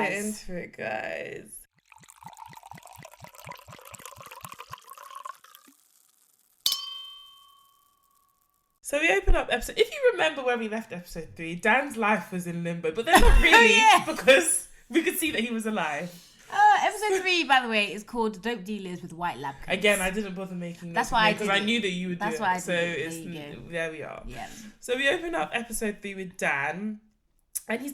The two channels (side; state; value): both; identical; correlation 1.00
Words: guys. So we open up episode... If you remember where we left episode 3, Dan's life was in limbo. But then not really, because we could see that he was alive. Episode 3, by the way, is called Dope Dealers with White Lab Coats. Again, I didn't bother making That's why I did because I knew that you would do it. That's why I did it. So there we are. Yeah. So we open up episode 3 with Dan. And he's